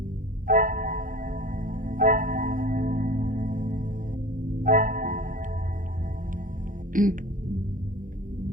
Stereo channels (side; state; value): left; late; 0.39 ms